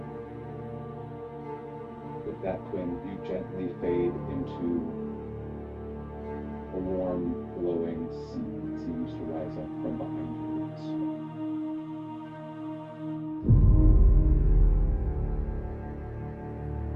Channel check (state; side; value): identical; both; correlation 1.00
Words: With that, Quinn, you gently fade into a warm, glowing sea that seems to rise up from behind you.